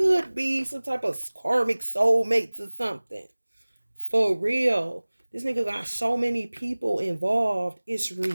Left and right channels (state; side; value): inverted; both; correlation -1.00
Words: be some type of karmic soulmates or something. For real. This nigga got so many people involved. It's